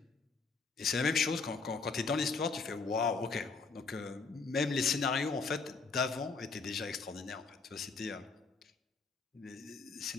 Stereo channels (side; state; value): right; quieter; 4.5 dB